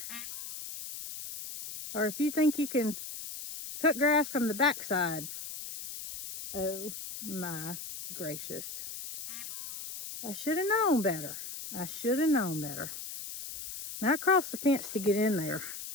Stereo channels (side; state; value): left; noise; hiss, 9 dB below the sound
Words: or if you think you can cut grass from the backside. Oh my gracious. I should have known better. I should have known better. Now I crossed the fence to get in there,